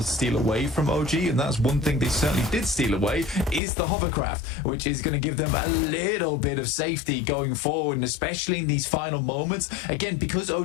to steal away from OG. And that's one thing they certainly did steal away is the hovercraft, which is going to give them a little bit of safety going forward, and especially in these final moments. Again, because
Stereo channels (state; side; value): drops out; right; at 3.6 s